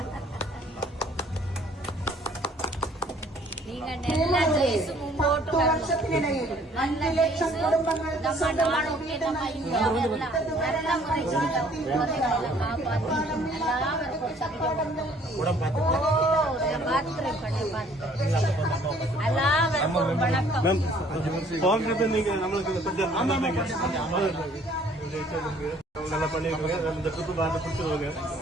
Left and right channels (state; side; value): normal; both; correlation 0.58